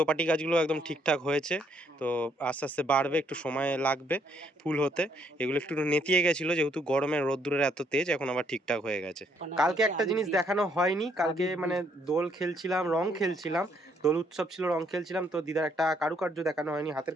গাছগুলো একদম ঠিকঠাক হয়েছে, তো আস্তে আস্তে বাড়বে, একটু সময় লাগবে ফুল হতে। এগুলো একটু নেতিয়ে গেছিলো যেহেতু গরমের রোদ্দুরের এত তেজ, এখন আবার ঠিকঠাক হয়ে গেছে। কালকে একটা জিনিস দেখানো হয়নি, কালকে মানে দোল খেলছিলাম, রং খেলছিলাম, দোল উৎসব ছিল, রং খেলছিলাম, তো দিদার একটা কারুকার্য দেখানো হয়নি, হাতের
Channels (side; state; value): both; normal; correlation 0.69